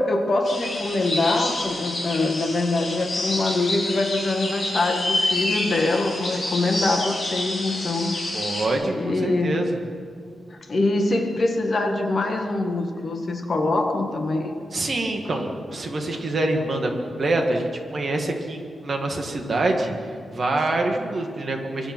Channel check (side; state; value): both; normal; correlation 0.88